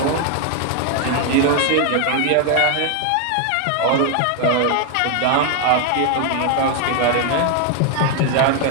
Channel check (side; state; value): both; different; correlation 0.01